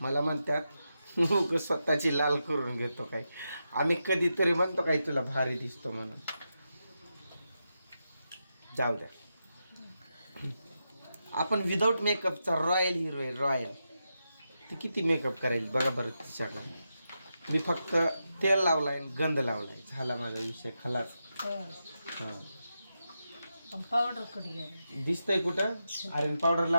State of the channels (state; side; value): inverted; both; correlation -0.88